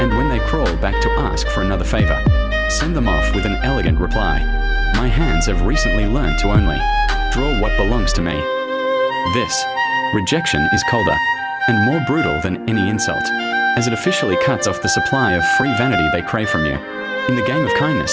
And when they crawl back to ask for another favor, send them off with an elegant reply. My hands have recently learned to only draw what belongs to me. This rejection is colder and more brutal than any insult, as it officially cuts off the supply of free vanity they crave from you. In the game of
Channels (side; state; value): both; identical; correlation 1.00